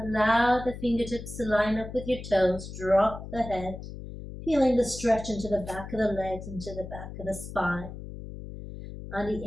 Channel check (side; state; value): left; noise; hum, 11 dB below the sound